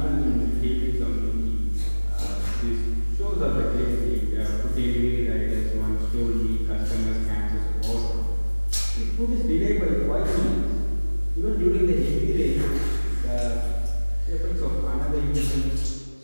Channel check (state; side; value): inverted; both; correlation -1.00